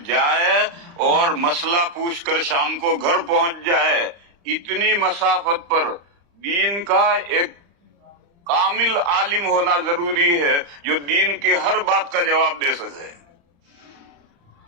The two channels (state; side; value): late; left; 35 ms